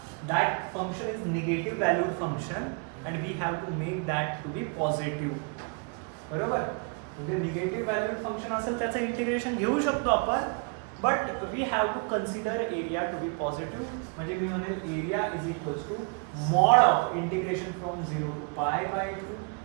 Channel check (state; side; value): quieter; left; 37.7 dB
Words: that function is negative valued function and we have to make that to be positive. बरोबर. म्हणजे निगेटिव्ह व्हॅल्यूड फंक्शन असेल त्याचं integration घेऊ शकतो आपण, but we have to consider area to be positive. म्हणजे मी म्हणेल area is equals to mod of integration from 0 to pi by 2,